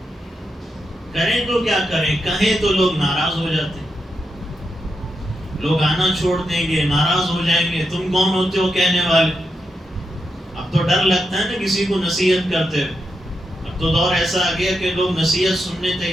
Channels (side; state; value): both; normal; correlation 0.85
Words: کریں تو کیا کریں، کہیں تو لوگ ناراض ہو جاتے ہیں، لوگ آنا چھوڑ دیں گے، ناراض ہو جائیں گے، تم کون ہوتے ہو کہنے والے۔ اب تو ڈر لگتا ہے نا کسی کو نصیحت کرتے ہوئے، اب تو دور ایسا آ گیا کہ لوگ نصیحت سننے